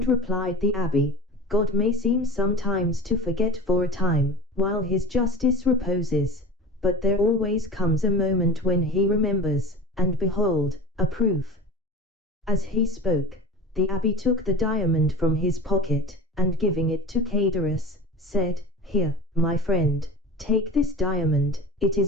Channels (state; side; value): normal; both; correlation 0.34